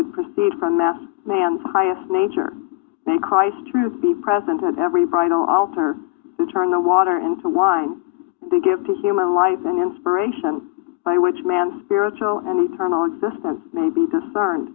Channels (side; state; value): right; quieter; 23.0 dB